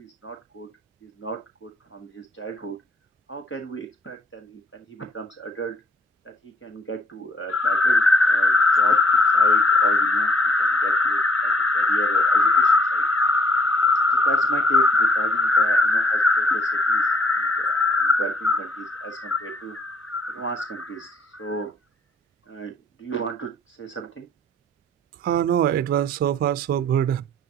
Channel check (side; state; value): both; normal; correlation 0.62